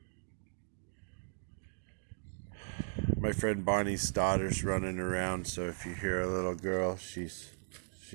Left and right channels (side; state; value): left; silent; digital silence